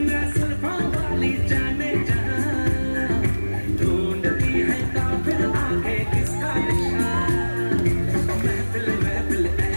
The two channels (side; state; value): both; inverted; correlation -1.00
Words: जुल्फों वाली जाने जहां ढूंढती है काफिर आंखें किसका निशान महफिल महफिल ऐ